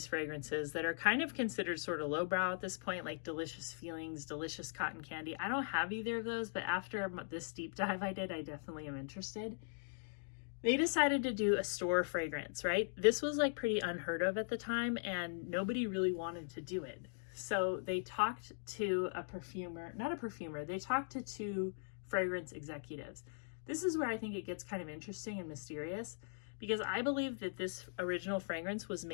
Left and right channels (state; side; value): silent; right; digital silence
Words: fragrances that are kind of considered sort of lowbrow at this point, like Delicious Feelings, Delicious Cotton Candy. I don't have either of those, but after this deep dive I did, I definitely am interested. They decided to do a store fragrance, right? This was like pretty unheard of at the time, and nobody really wanted to do it. So they talked to they talked to two fragrance executives. This is where I think it gets kind of interesting and mysterious, because I believe that this original fragrance was